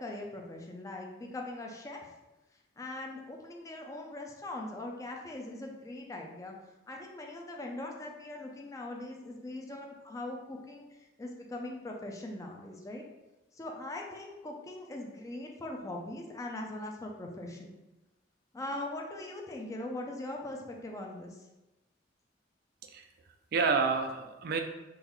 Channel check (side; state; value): both; normal; correlation 0.19